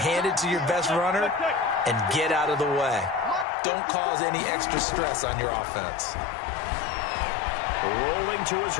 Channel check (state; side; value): drops out; right; at 3.5 s